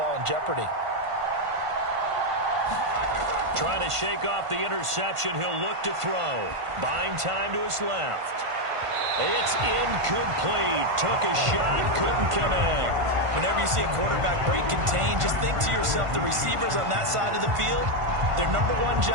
in jeopardy. Trying to shake off the interception. He'll look to throw. Buying time to his left. It's incomplete. Took a shot, couldn't connect. Whenever you see a quarterback break contain, just think to yourself, the receivers on that side of the field, their number one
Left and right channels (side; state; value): left; late; 1.5 ms